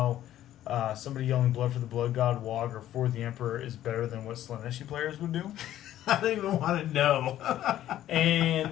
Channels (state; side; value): quieter; right; 12.7 dB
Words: somebody yelling "Blood for the Blood God," Wog, or "For the Emperor" is better than what Slaneshi players would do. I don't even want to know.